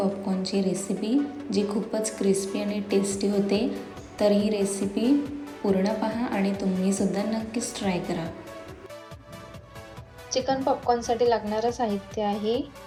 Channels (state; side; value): identical; both; correlation 1.00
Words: रेसिपी, जी खूपच क्रिस्पी आणि टेस्टी होते. तर ही रेसिपी पूर्ण पहा आणि तुम्हीसुद्धा नक्कीच ट्राय करा. चिकन पॉपकॉर्नसाठी लागणारं साहित्य आहे